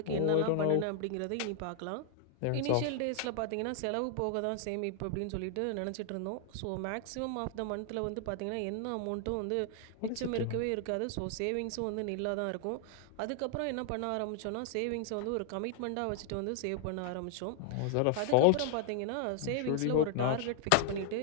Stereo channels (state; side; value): different; both; correlation 0.00